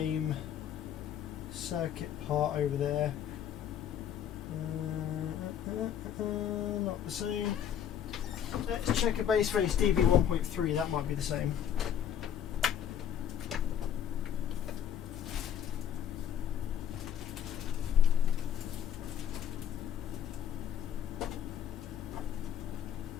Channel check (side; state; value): right; quieter; 9.4 dB